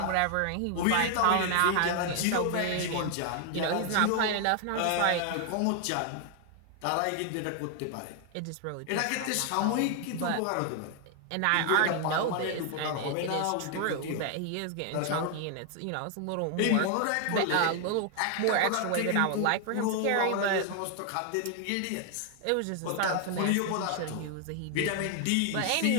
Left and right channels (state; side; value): different; both; correlation 0.00